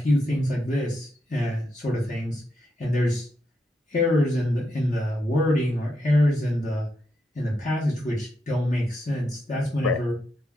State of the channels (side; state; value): both; normal; correlation 0.83